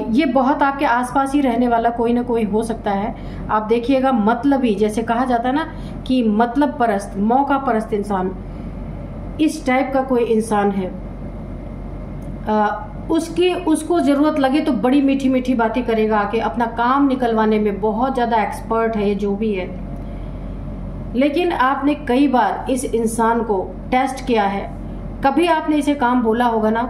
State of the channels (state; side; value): identical; both; correlation 1.00